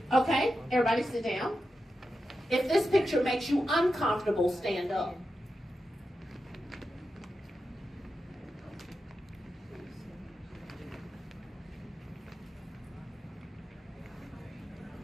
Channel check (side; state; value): both; normal; correlation 0.89